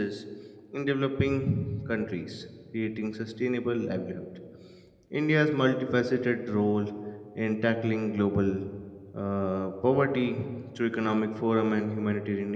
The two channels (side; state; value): both; identical; correlation 1.00